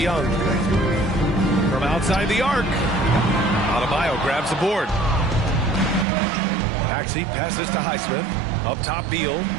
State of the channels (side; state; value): left; drops out; at 6.1 s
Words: From outside the arc. Adebayo grabs the board. Maxey passes to Highsmith. Up top Beal.